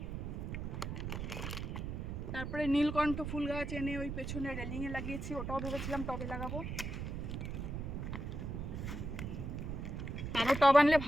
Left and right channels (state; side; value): noise; right; rumble, 4 dB below the sound